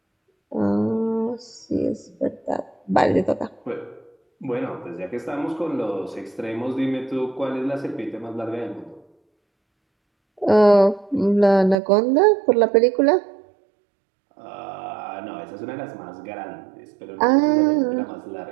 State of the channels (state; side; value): drops out; left; at 11.8 s